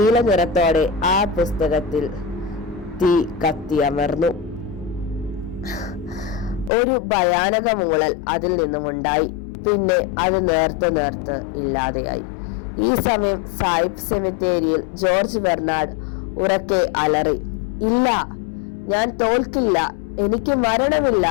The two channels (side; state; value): right; drops out; at 6.7 s